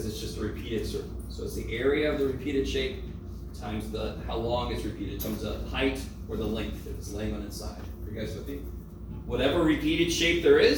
it's just a repeated circle. So it's the area of the repeated shape times how long it's repeated times the height or the length if it's laying on its side. Are you guys with me? Whatever repeated shape there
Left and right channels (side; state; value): both; identical; correlation 1.00